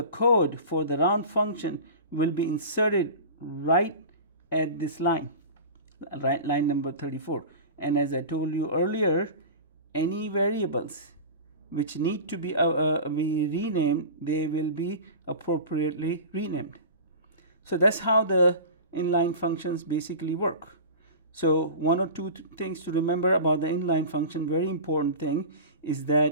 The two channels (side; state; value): both; inverted; correlation -0.33